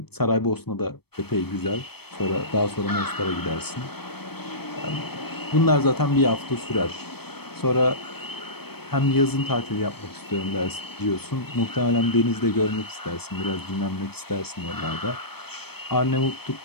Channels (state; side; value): late; right; 0.97 ms